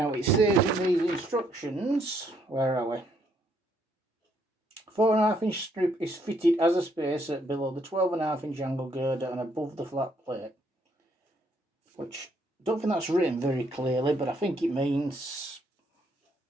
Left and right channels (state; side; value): normal; both; correlation 0.71